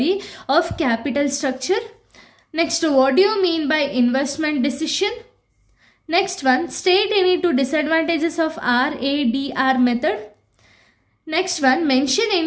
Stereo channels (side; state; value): both; identical; correlation 1.00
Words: of capital structure. Next what do you mean by investment decision. Next one, state any 2 disadvantages of RADR method. Next one, mention